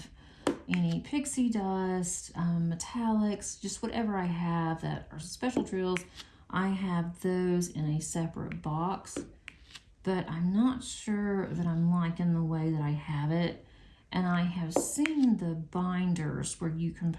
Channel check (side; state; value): both; identical; correlation 1.00